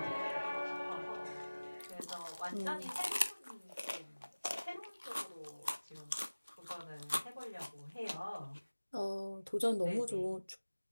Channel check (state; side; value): inverted; both; correlation -1.00